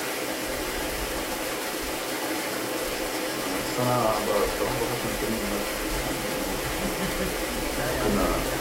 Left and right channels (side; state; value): both; identical; correlation 1.00